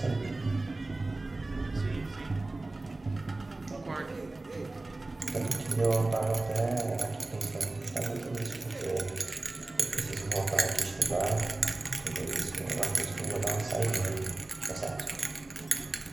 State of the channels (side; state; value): left; quieter; 3.0 dB